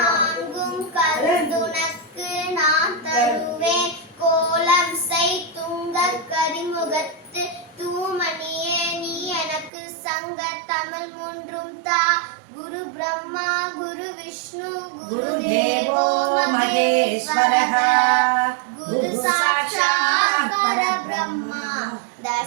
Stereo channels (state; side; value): drops out; left; at 9.7 s